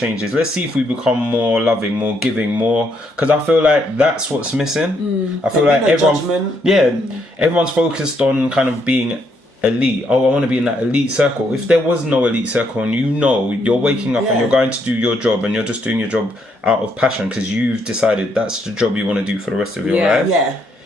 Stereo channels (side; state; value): both; normal; correlation 0.74